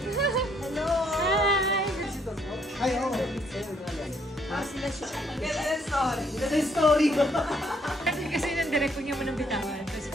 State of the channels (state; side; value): normal; both; correlation 0.68